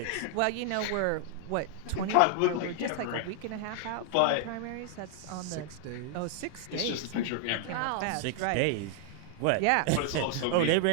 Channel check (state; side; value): different; both; correlation 0.00